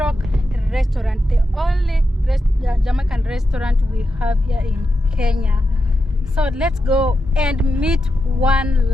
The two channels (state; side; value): normal; both; correlation 0.88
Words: restaurant, the only Jamaican restaurant we have here in Kenya. So let's go and meet One